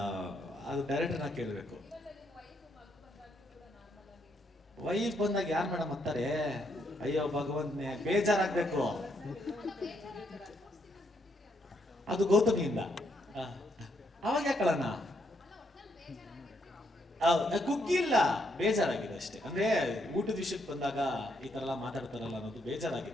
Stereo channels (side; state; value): both; normal; correlation 0.75